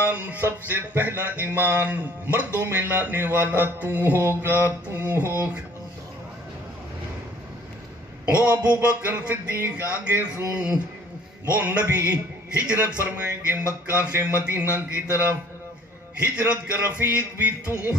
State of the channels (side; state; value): both; normal; correlation 0.55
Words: سب سے پہلا ایمان مردوں میں لانے والا تو ہوگا، تو ہوگا. وہ ابو بکر صدیق آگے سن، وہ نبی ہجرت فرمائیں گے مکہ سے مدینہ کی طرف. ہجرت کا رفیق بھی تو